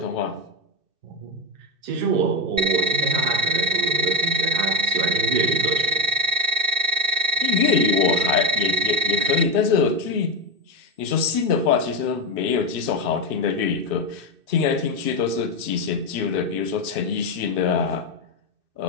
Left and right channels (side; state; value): left; late; 2.6 ms